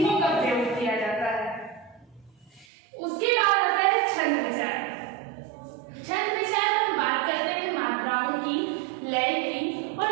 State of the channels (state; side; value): drops out; left; at 2.7 s